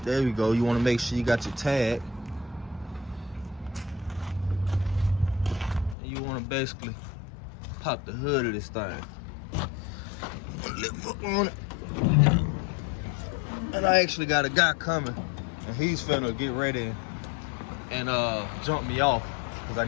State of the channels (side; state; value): right; drops out; at 6.0 s